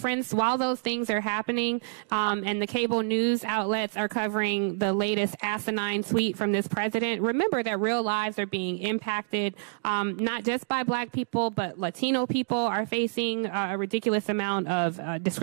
while those things are happening, and the cable news outlets are covering the latest asinine tweet from this president, remember that real lives are being impacted, not just by black people, but Latino people are facing a ridiculous amount of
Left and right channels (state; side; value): silent; left; digital silence